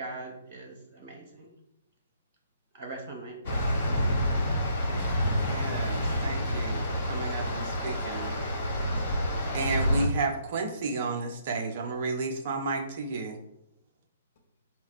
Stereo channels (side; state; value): both; inverted; correlation -0.68